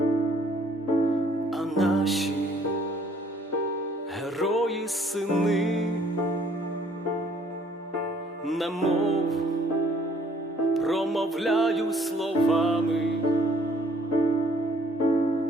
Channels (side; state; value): both; normal; correlation 0.61